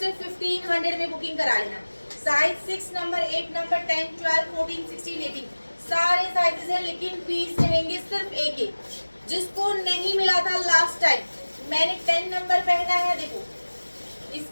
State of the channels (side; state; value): both; inverted; correlation -1.00